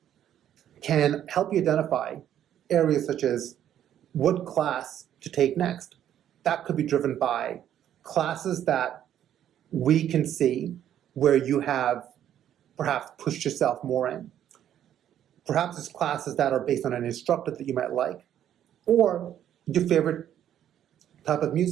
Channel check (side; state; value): left; quieter; 10.6 dB